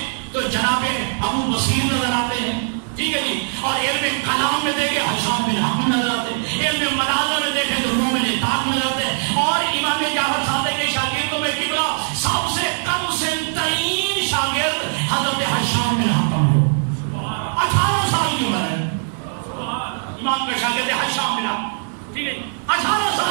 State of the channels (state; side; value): silent; left; digital silence